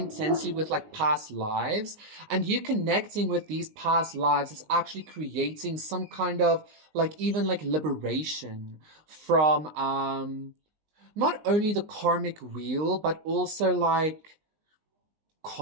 with like past lives, and you connecting with these past lives is actually creating some kind of like even like liberation from not only the karmic wheel, but also like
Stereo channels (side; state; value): left; late; 19 ms